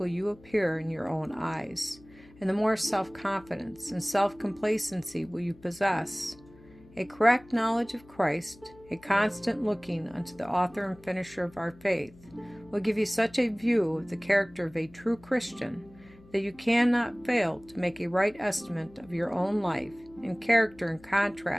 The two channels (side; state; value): left; noise; hum, 24 dB below the sound